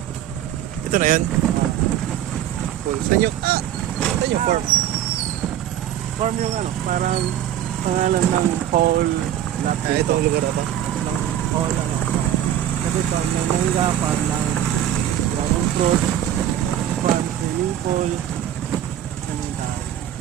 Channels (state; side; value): quieter; left; 11.3 dB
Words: ngayon. Cool. Saan yung farm? Farm yung ano, parang pangalan ng whole lot Itong lugar na to. ng whole ano. Kasi ito, may mangga, farm ng dragon fruit, farm swimming pool, ano yung tao.